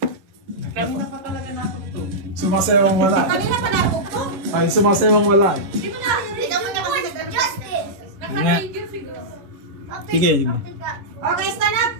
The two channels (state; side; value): late; left; 10 ms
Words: Sumasewang wala. Kanina pa napukpok. Ay, sumasewang wala. Di mo na. Hindi mo na kasi Justice. Sige. Okay, stand up.